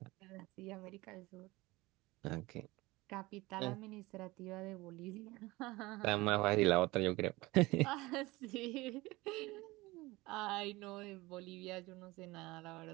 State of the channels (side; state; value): left; quieter; 20.9 dB